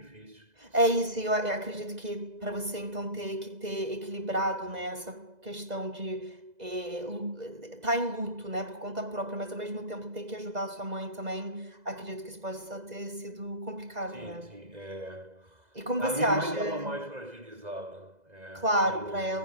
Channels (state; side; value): late; left; 2.0 ms